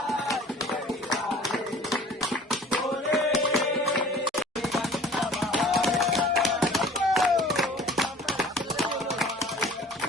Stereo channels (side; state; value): both; normal; correlation 0.47